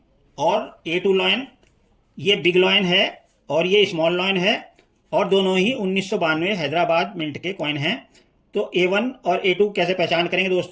और A2 लॉयन, ये बिग लॉयन है और ये स्मॉल लॉयन है, और दोनों ही 1992 हैदराबाद मिंट के कॉइन हैं। तो A1 और A2 कैसे पहचान करेंगे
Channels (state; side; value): identical; both; correlation 1.00